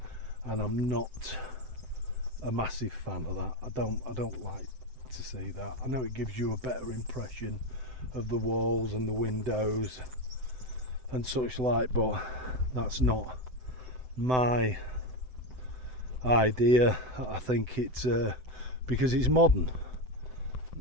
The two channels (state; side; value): late; left; 7.8 ms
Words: and I'm not a massive fan of that. I don't like to see that. I know it gives you a better impression of the walls and the windows and such like, but that's not my idea. I think it's because it's modern.